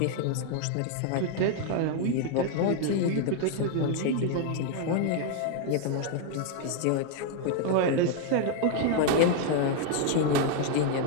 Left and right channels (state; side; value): different; both; correlation 0.00